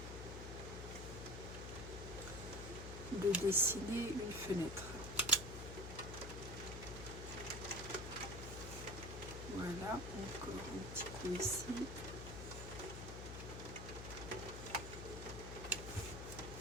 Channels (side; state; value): left; noise; hum, 7 dB below the sound